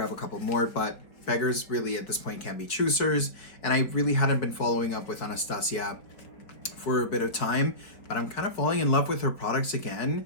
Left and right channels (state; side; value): late; right; 4.4 ms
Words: a couple more, but beggars really at this point can be choosers. And I really hadn't been following up with Anastasia for a bit of time, but I'm kind of falling in love with her products